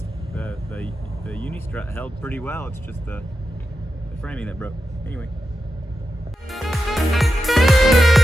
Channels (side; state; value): both; normal; correlation 0.89